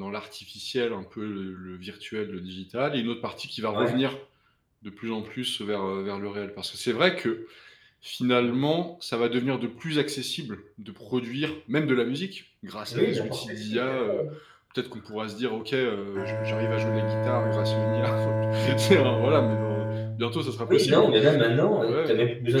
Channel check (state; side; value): identical; both; correlation 1.00